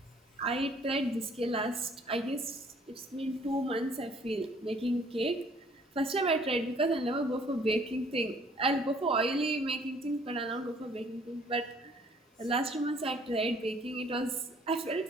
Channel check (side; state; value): both; normal; correlation 0.59